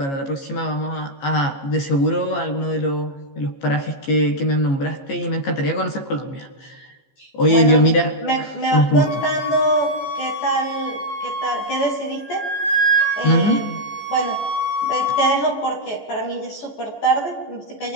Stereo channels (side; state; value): right; late; 14 ms